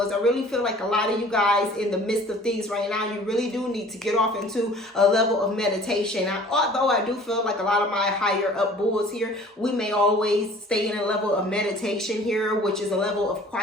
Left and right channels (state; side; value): normal; both; correlation 0.49